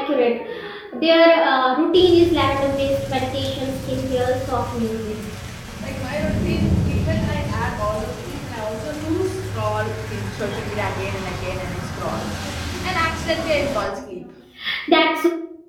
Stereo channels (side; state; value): both; identical; correlation 1.00